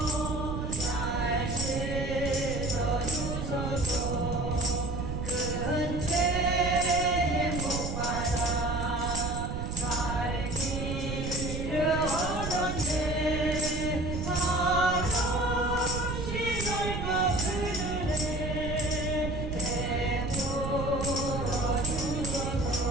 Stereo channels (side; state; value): right; noise; rumble, 4 dB below the sound